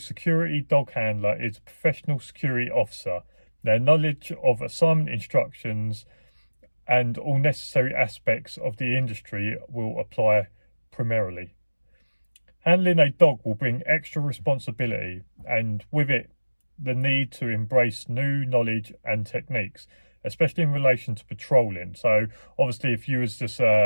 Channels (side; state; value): both; inverted; correlation -1.00